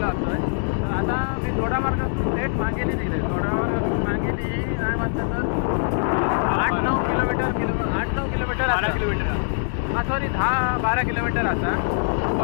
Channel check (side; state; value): right; silent; digital silence